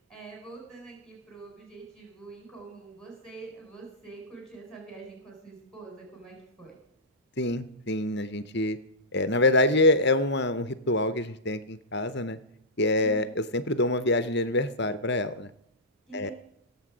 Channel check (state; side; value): normal; both; correlation -0.16